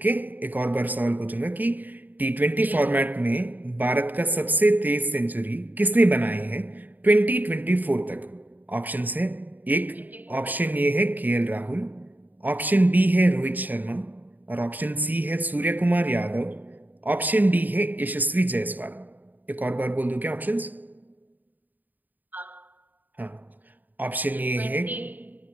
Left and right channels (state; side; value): late; left; 0.085 ms